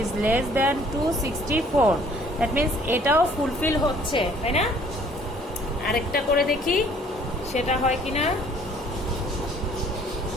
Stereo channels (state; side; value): normal; both; correlation 0.58